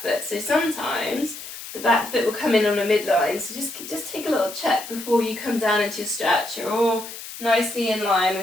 foot. So sometimes the back foot will come in on a midline, so just take a little check before you come down into your stretch. You're all nicely in line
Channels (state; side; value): noise; left; hiss, 12 dB below the sound